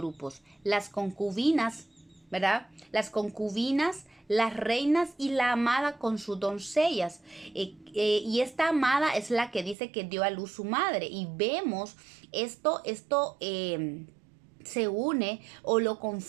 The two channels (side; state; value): left; drops out; at 9.8 s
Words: Las concubinas, ¿verdad? Las concubinas, las reinas y la amada con sus doncellas. Y esta amada es la que dice que dio a luz su madre. Y vemos esto se une o lo